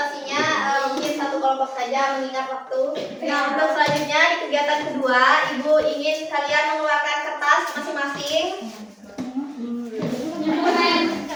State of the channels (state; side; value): identical; both; correlation 1.00